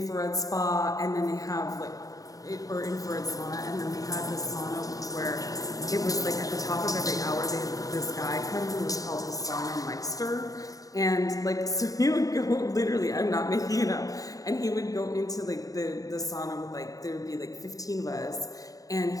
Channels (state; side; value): late; right; 0.17 ms